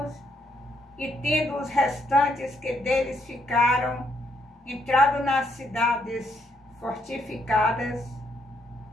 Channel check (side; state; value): both; normal; correlation 0.74